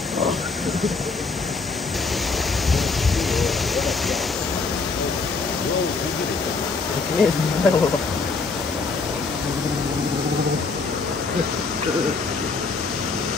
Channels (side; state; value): right; quieter; 4.3 dB